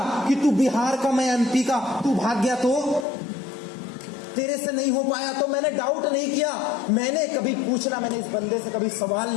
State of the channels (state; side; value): drops out; right; at 3.1 s